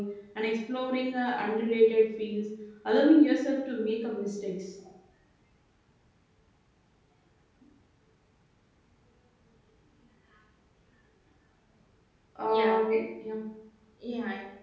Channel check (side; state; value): both; identical; correlation 1.00